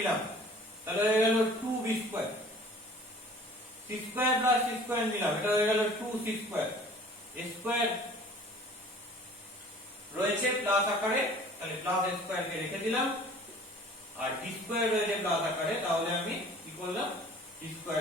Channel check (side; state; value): both; normal; correlation 0.48